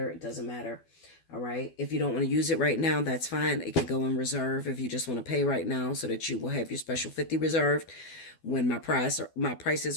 It doesn't matter. All right. If you don't want to use it right now, that's fine. It could go in reserve if you just want to pay right now so that you will have your special 50 reserved when my prices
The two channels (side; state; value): right; late; 12 ms